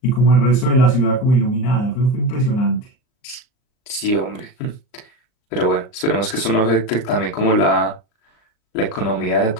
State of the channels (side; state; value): right; late; 39 ms